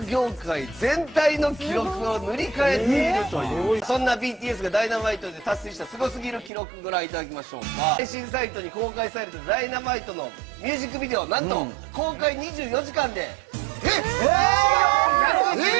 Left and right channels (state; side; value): drops out; left; at 6.5 s